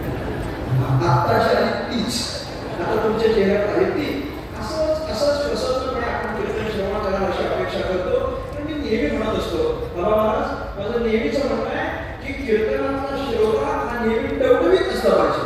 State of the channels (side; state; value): both; identical; correlation 1.00